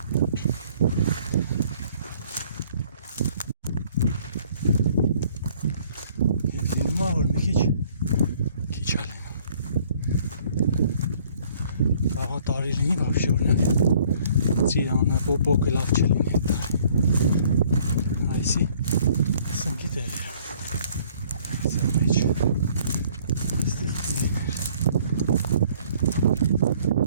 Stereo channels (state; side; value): inverted; both; correlation -0.59